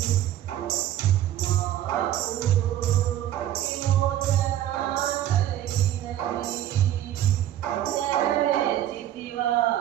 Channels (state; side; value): quieter; left; 12.2 dB